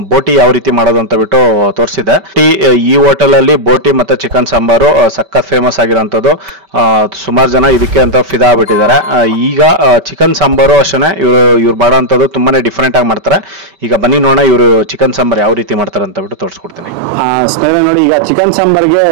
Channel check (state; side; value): late; left; 5.2 ms